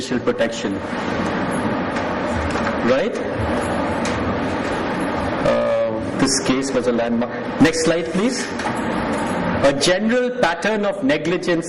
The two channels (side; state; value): both; identical; correlation 1.00